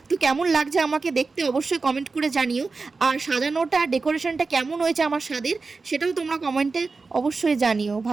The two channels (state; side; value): quieter; left; 4.2 dB